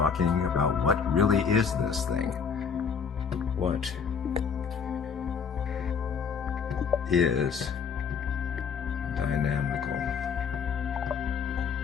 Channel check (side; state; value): right; quieter; 6.3 dB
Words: about what really is this thing. What is dynamical